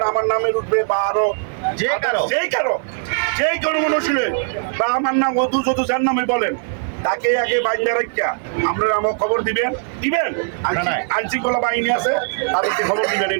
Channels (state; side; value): silent; left; 56 dB below the other